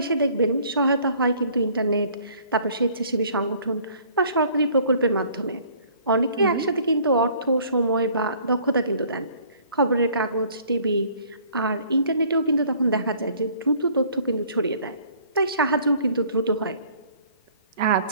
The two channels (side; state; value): both; inverted; correlation -0.56